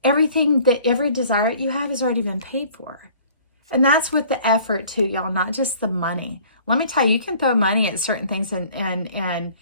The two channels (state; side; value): inverted; both; correlation -0.52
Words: every desire you have has already been paid for. And that's with the effort too, y'all, not just the money. Let me tell you, you can throw money at certain things and